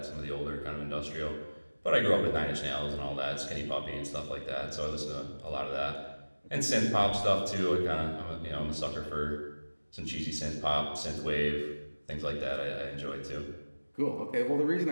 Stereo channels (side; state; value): both; inverted; correlation -1.00